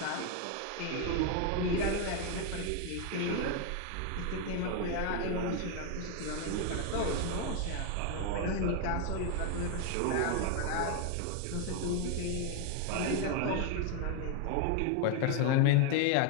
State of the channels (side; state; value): both; different; correlation 0.01